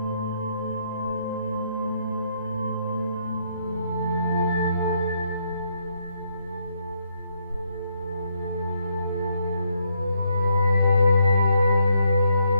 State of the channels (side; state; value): both; inverted; correlation -0.75